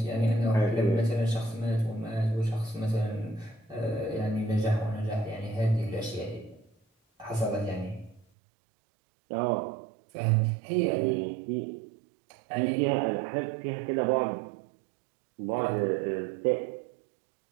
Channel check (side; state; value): left; drops out; at 8.2 s